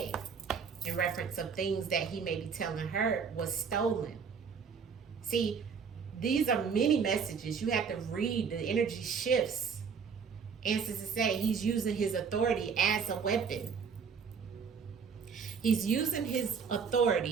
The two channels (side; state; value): left; quieter; 6.1 dB